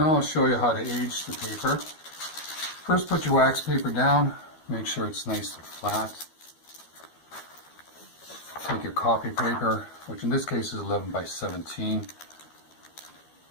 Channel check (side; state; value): right; late; 12 ms